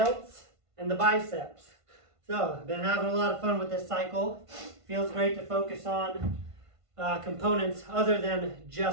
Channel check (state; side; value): late; left; 1.5 ms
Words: and the biceps. So, I've been having a lot of fun with this cycle. Feels great to focus on components other than